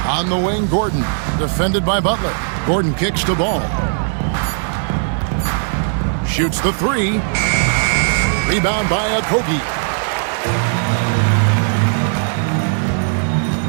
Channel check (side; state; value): left; silent; digital silence